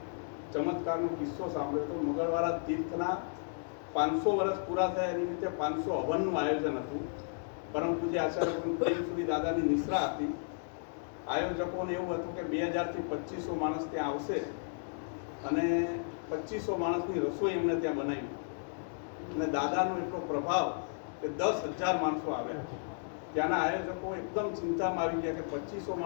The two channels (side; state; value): right; silent; digital silence